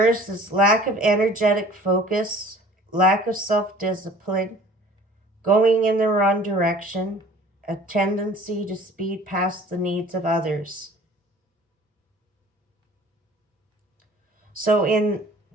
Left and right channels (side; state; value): both; normal; correlation 0.49